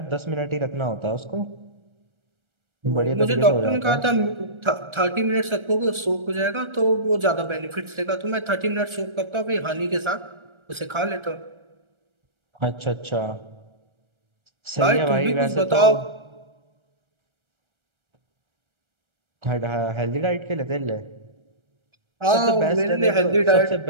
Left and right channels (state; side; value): late; left; 1.3 ms